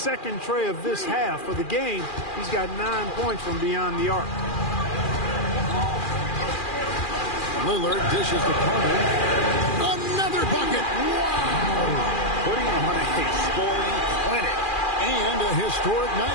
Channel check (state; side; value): late; right; 2.4 ms